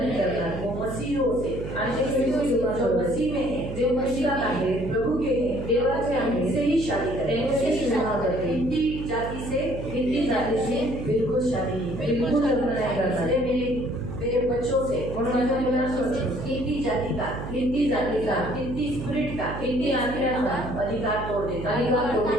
करणार. वो मसीहों से, आणि ते ख्रिस्त जो मसीह में है, जे मसीहात आहे, प्रभु के हैं, देवाचे आहे, से ही शादी करेंगे. त्यांच्याशी विवाह करते. हिंदी जाति से, हिंदी जाती से बिल्कुल शादी नहीं करेंगे. बिल्कुल लग्न नाही करणार. इसलिए मेरे बच्चों से, म्हणून माझ्या मुलांपासून हिंदी जाति का, हिंदी जातीचा, हिंदी स्पिरिट का, हिंदी आत्म्याचा अधिकार तोड़ देता है. अधिकार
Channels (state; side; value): noise; right; hum, 8 dB below the sound